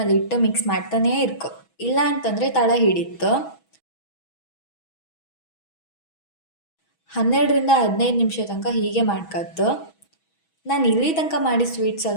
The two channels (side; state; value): right; late; 6.2 ms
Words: ಇಟ್ಟು ಮಿಕ್ಸ್ ಮಾಡ್ತಾನೇ ಇರ್ಕೊ, ಇಲ್ಲ ಅಂತಂದರೆ ತಳ ಹಿಡಿತ್ತು. 12ರಿಂದ 15 ನಿಮಿಷ ತನಕ ಹೀಗೆ ಮಾಡ್ಕತ್ತು. ನಾನು ಇಲ್ಲಿ ತನಕ ಮಾಡಿ sweets